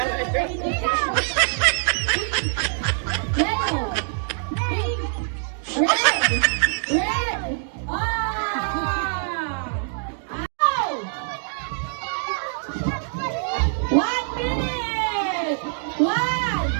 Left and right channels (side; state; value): left; silent; digital silence